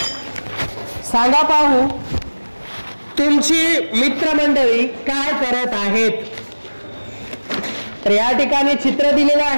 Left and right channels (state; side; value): inverted; both; correlation -1.00